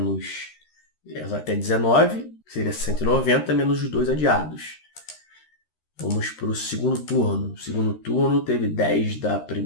até 19, seria 190 menos os 2 adiados. Vamos para o segundo turno. O segundo turno teve 10 da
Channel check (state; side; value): late; right; 13 ms